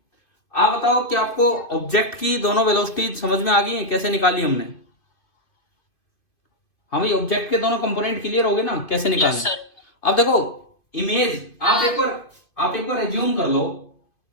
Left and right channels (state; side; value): late; right; 2.5 ms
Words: आप बताओ कि आपको ऑब्जेक्ट की दोनों वेलोसिटी समझ में आ गई है, कैसे निकाली हमने? हाँ भाई, ऑब्जेक्ट के दोनों कंपोनेंट क्लियर हो गए ना, कैसे निकाले? अब देखो इमेज, आप एक बार एज्यूम कर लो